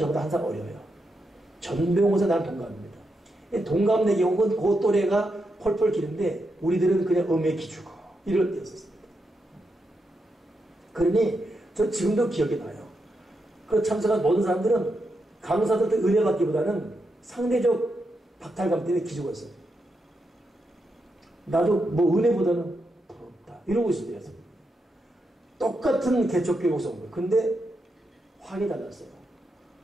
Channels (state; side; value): normal; both; correlation 0.84